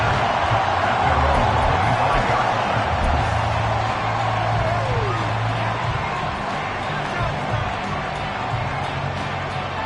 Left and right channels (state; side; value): identical; both; correlation 1.00